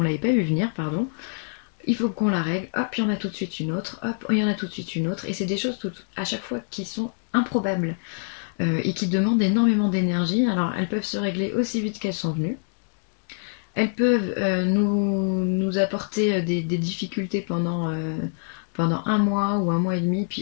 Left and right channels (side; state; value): right; silent; digital silence